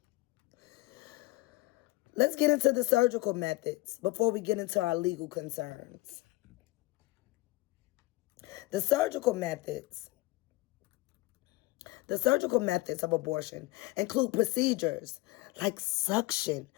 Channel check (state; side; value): quieter; right; 20.6 dB